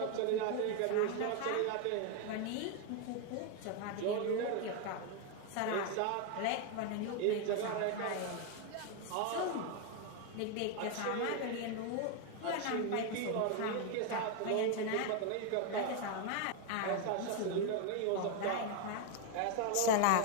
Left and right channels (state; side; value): different; both; correlation 0.01